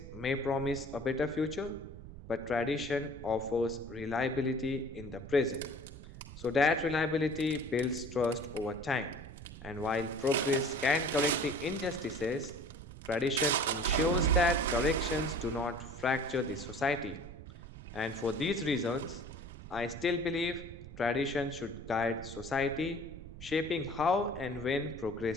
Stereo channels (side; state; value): right; noise; rumble, 13 dB below the sound